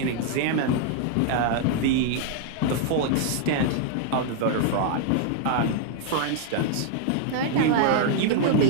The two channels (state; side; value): different; both; correlation 0.00